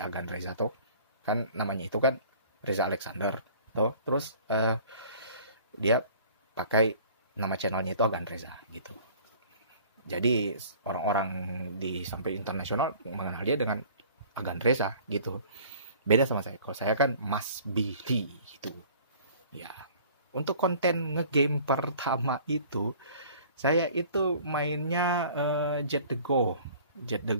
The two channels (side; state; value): both; inverted; correlation -0.49